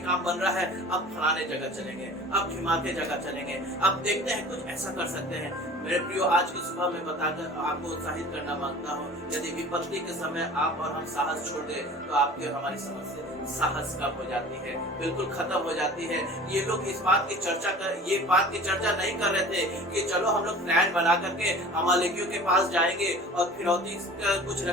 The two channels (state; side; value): normal; both; correlation 0.42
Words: काम बन रहा है, अब फलाने जगह चलेंगे, अब ढिमाके जगह चलेंगे, अब देखते हैं कुछ ऐसा कर सकते हैं। मेरे प्रियो, आज की सुबह में बताकर आपको उत्साहित करना मांगता हूँ, यदि विपत्ति के समय आप और हम साहस छोड़ दें तो आपकी और हमारी समस्या साहस कम हो जाती है, बिल्कुल खत्म हो जाती है। ये लोग इस बात की चर्चा नहीं कर रहे थे कि चलो हम लोग प्लान बना करके अमालेकियों के पास जाएंगे और फिरौती कुछ